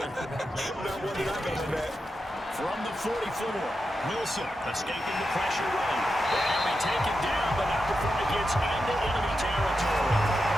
Not one that I got in that. From the 44, Wilson escaping the pressure run. And we take it down, but not before it gets into enemy territory.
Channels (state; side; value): normal; both; correlation 0.88